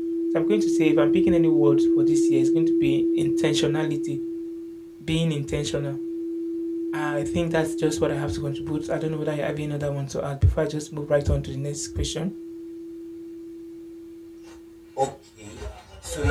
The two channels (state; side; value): identical; both; correlation 1.00